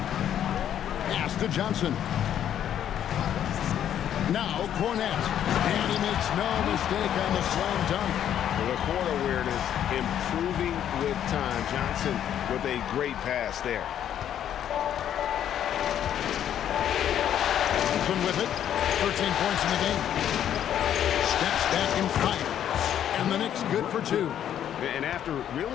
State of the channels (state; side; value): quieter; right; 10.2 dB